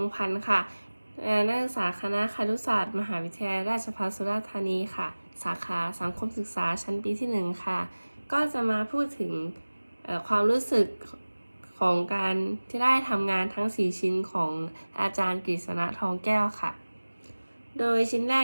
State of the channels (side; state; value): both; inverted; correlation -1.00